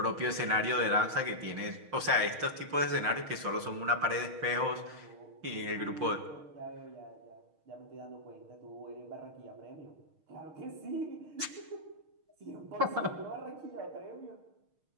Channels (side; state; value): left; late; 6.5 ms